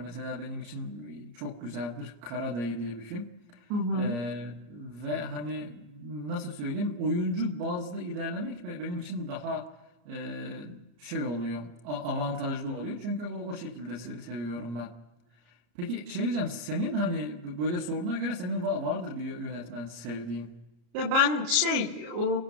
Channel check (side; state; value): left; late; 34 ms